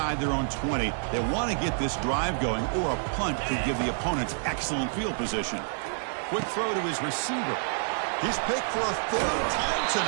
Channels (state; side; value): silent; left; 59 dB below the other